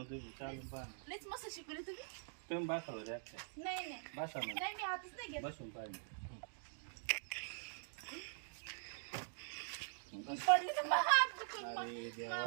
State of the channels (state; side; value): silent; left; digital silence